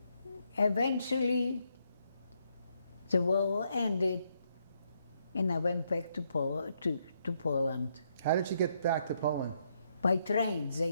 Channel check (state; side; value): inverted; both; correlation -0.76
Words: Eventually, the war ended, and I went back to Poland. How did you get back to Poland? By train.